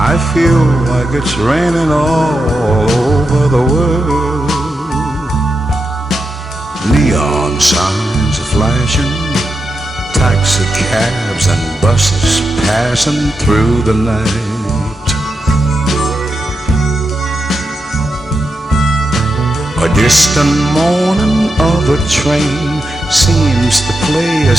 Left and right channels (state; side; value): normal; both; correlation 0.86